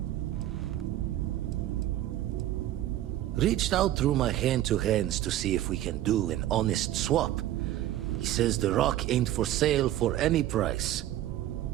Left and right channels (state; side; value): quieter; left; 13.5 dB